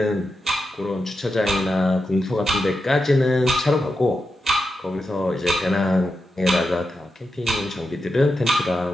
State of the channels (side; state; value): both; normal; correlation 0.88